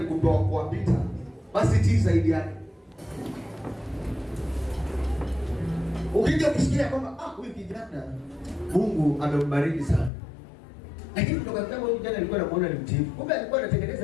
kuwapita, basi tii zaidi yake. Ukija kusikia kwamba huyu kijana Mungu amembariki sana, lakini kutoka kama huyu kijana alikuwa anamuona ni mtiifu, kumbe alikuwa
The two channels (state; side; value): drops out; right; at 10.1 s